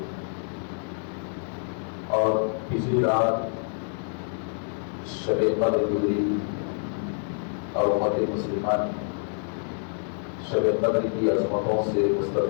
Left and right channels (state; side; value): silent; right; 60 dB below the other